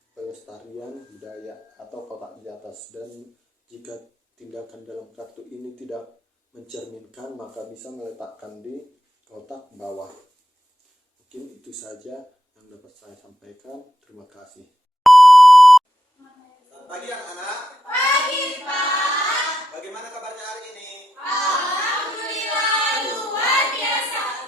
pelestarian budaya atau kotak di atas. Dan jika tindakan dalam kartu ini tidak mencerminkan, maka bisa meletakkan di kotak bawah. Mungkin itu saja yang dapat saya sampaikan. Terima kasih. Selamat pagi anak-anak. Pagi, Pak. Bagaimana kabarnya hari ini? Alhamdulillah, luar biasa.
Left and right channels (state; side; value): normal; both; correlation 0.85